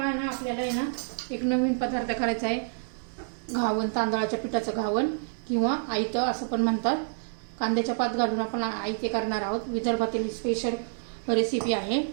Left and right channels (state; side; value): silent; left; 59 dB below the other